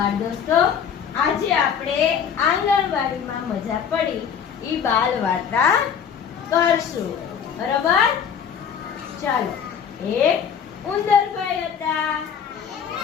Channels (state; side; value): quieter; right; 7.6 dB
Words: દોસ્તો, આજે આપણે આંગણવાડીમાં મજા પડી ઈ બાલ વાર્તા કરશું. બરોબર? ચાલો. એક ઉંદરભાઈ હતા.